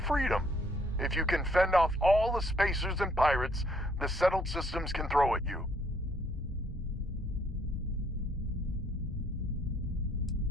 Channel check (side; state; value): both; normal; correlation 0.67